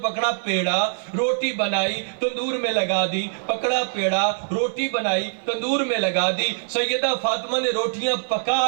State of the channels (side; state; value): left; silent; digital silence